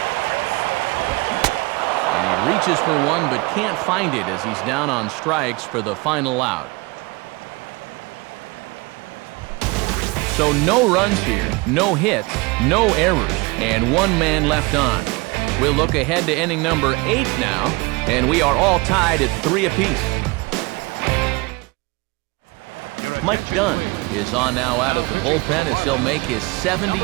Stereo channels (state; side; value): quieter; left; 25.3 dB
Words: And he reaches for one but can't find it as he's down on strikes for the final out. So no runs here, no hits, no errors, and one man left on. We'll look ahead to inning number 8 now, and we are all tied at 3 apiece. Mike Dunn is on now out of the bullpen as he'll make his